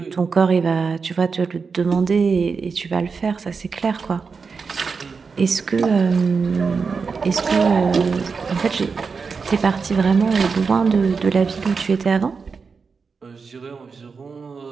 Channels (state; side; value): quieter; left; 5.1 dB